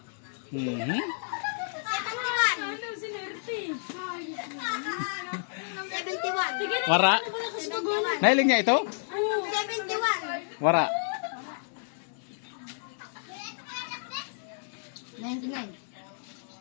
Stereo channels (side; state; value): right; silent; digital silence